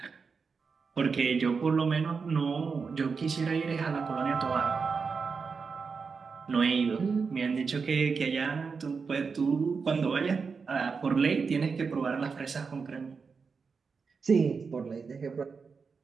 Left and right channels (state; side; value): quieter; left; 5.2 dB